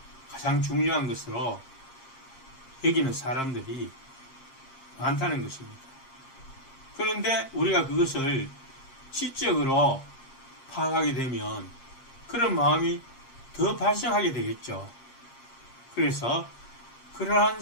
가장 중요한 것으로 여기는 사람들이 많다는 것입니다. 그런데 우리가 그것을 지적으로 파악하게 되면 그런 마음이 더 발생하게 되겠죠. 그래서 그러한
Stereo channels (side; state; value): right; late; 7.5 ms